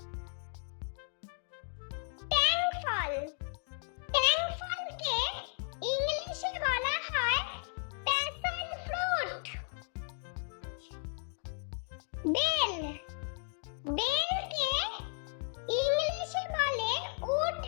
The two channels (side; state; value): right; silent; 55 dB below the other